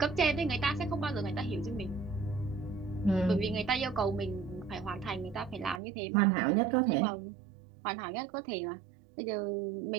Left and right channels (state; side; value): drops out; left; at 5.8 s